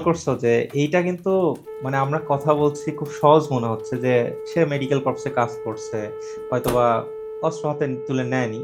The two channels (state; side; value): identical; both; correlation 1.00